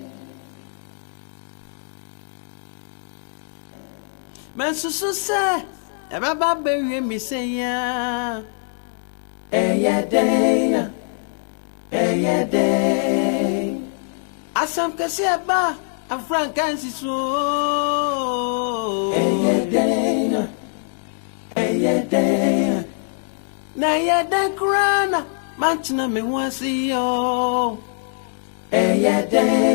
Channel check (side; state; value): right; silent; 63 dB below the other